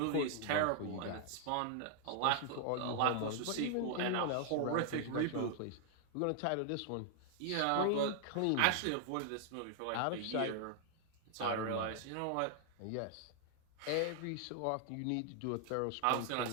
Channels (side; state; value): both; different; correlation 0.00